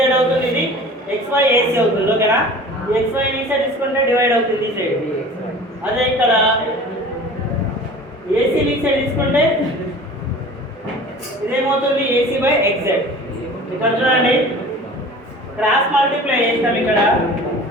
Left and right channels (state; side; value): normal; both; correlation 0.42